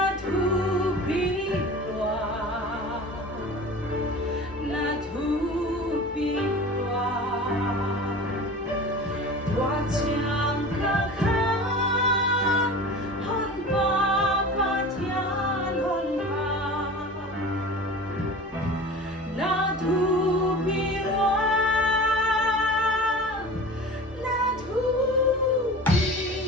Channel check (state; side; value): normal; both; correlation 0.37